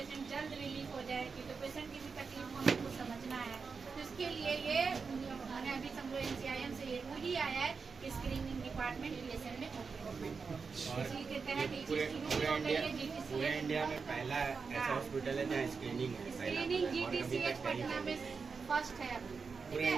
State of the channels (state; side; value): quieter; left; 5.1 dB